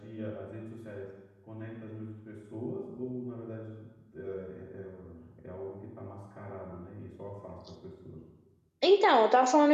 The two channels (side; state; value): both; identical; correlation 1.00